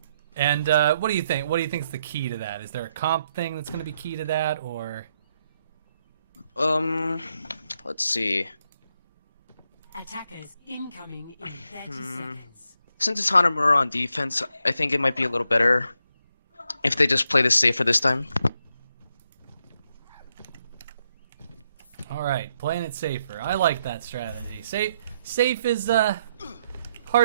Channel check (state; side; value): inverted; both; correlation -0.79